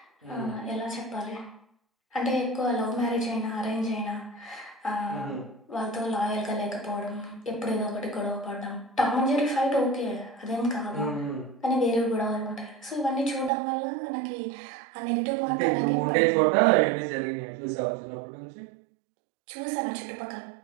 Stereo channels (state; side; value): drops out; left; at 13.5 s